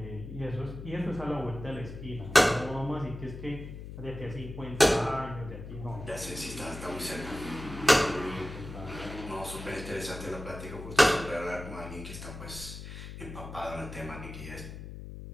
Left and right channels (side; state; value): left; noise; hum, 10 dB below the sound